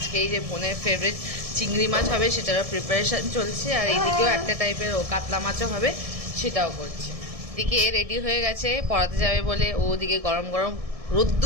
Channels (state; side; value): late; left; 1.7 ms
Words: এই যে বোনের ফেভারিট চিংড়ি মাছ হবে, সেটারও প্রিপারেশন চলছে। আর এইদিকেও একটা টাইপের কাতলা মাছও হবে, সেটাও করছে। এদিকে রেডি হয়ে গেছে পড়াতে যাবে বলে, ওদিকে গরম গরম